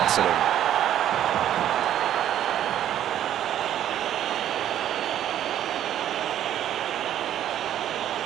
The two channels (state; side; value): quieter; left; 11.2 dB